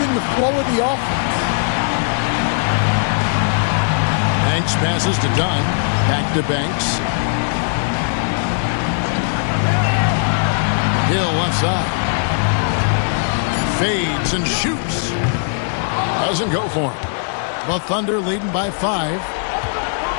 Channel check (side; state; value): right; silent; digital silence